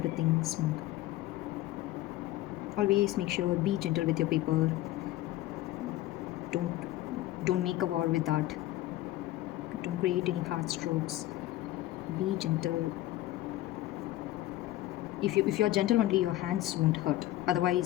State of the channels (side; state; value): right; quieter; 15.7 dB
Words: smooth. Always make sure, be gentle with your paper. Don't make a war with that. Don't create any hard strokes. Be gentle. If you're gentle only, your hands won't hurt.